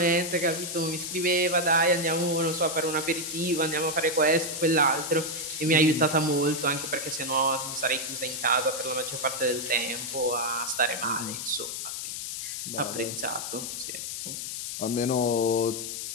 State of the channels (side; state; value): left; noise; hiss, 5 dB below the sound